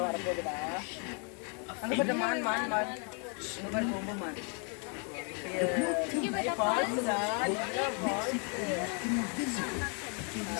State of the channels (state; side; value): quieter; right; 38.6 dB